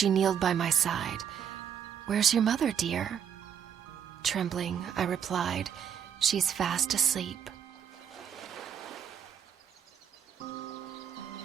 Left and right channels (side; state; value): left; quieter; 8.3 dB